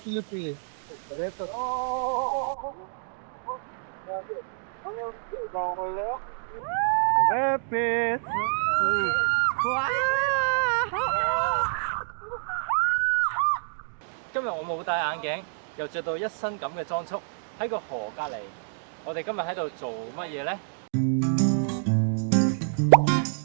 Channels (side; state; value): left; silent; digital silence